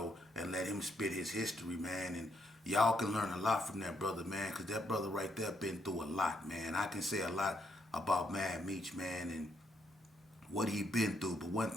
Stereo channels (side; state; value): both; normal; correlation 0.75